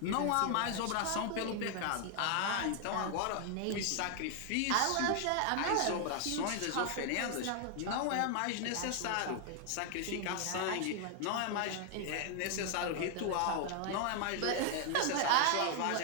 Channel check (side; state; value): both; different; correlation 0.00